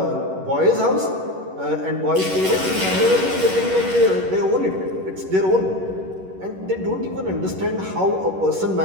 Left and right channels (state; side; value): late; left; 11 ms